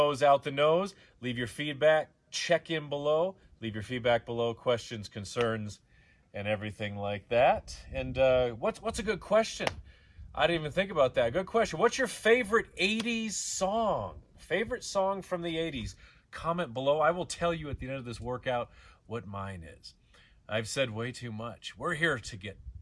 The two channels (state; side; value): identical; both; correlation 1.00